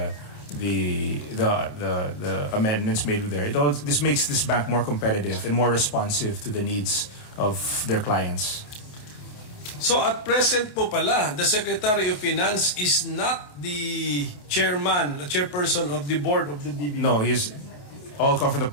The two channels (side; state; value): right; late; 28 ms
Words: amendments made with there, this makes this bank more competitive and more responsive to the needs of their clients. So at present po pala, the Secretary of Finance is not the chairperson of the board of the DBP. No, he's all come from the